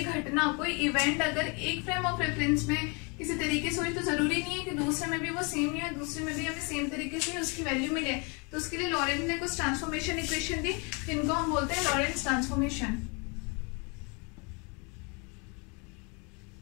घटना, कोई इवेंट अगर एक फ्रेम ऑफ रेफरेंस में किसी तरीके से हुई तो जरूरी नहीं है कि दूसरे में भी वो सेम ही है, दूसरे में भी हमें सेम तरीके से उसकी वैल्यू मिले। तो उसके लिए लॉरेंट ने कुछ ट्रांसफॉर्मेशन इक्वेशन दी, जिनको हम बोलते हैं लॉरेंट्स ट्रांसफॉर्मेशन।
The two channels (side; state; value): right; quieter; 32.4 dB